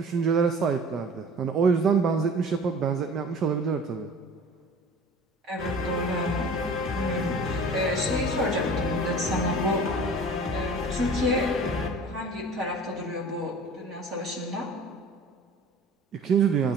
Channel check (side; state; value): both; normal; correlation 0.43